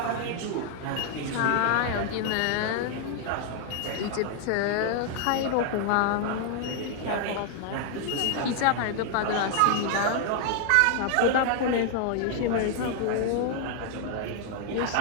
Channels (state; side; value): different; both; correlation 0.00